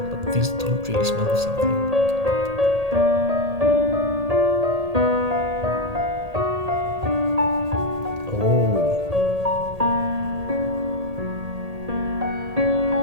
these don't really smell of something.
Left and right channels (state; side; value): late; left; 1.8 ms